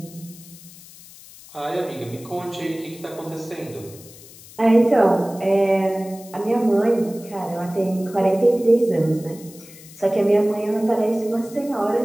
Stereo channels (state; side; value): noise; left; hiss, 20 dB below the sound